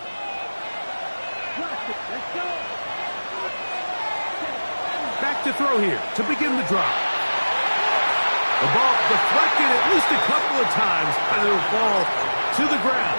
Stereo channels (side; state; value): both; inverted; correlation -1.00